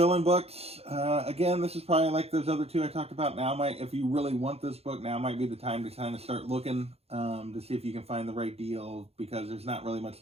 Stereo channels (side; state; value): left; late; 0.29 ms